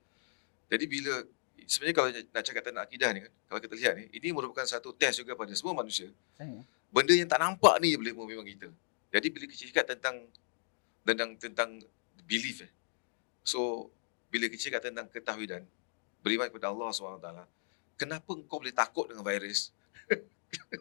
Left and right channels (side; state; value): right; silent; digital silence